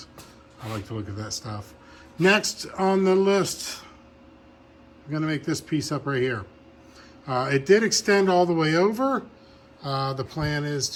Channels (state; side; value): identical; both; correlation 1.00